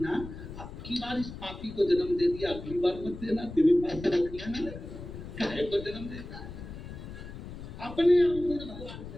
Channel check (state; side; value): noise; left; rumble, 11 dB below the sound